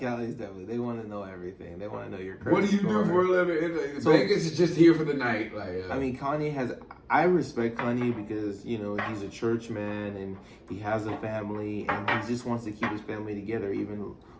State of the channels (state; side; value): identical; both; correlation 1.00